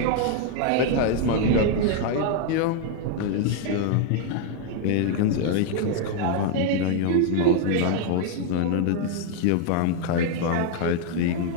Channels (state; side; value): different; both; correlation 0.00